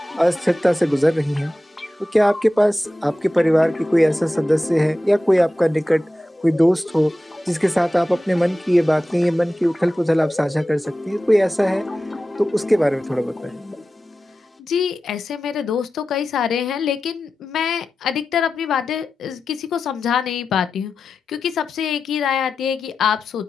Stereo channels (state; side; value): normal; both; correlation 0.93